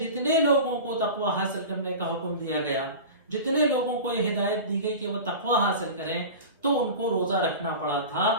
لوگوں کو تقوی حاصل کرنے کا حکم دیا گیا، جتنے لوگوں کو یہ ہدایت دی گئی کہ وہ تقوی حاصل کریں، تو ان کو روزہ رکھنا پڑا تھا،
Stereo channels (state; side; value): inverted; both; correlation -0.32